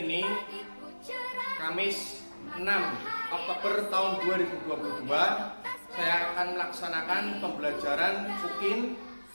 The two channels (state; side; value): inverted; both; correlation -1.00